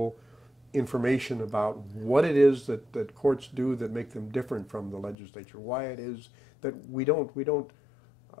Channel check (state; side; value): drops out; right; at 5.2 s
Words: information about what it is that courts do that make them different from the legislature, why it is that we don't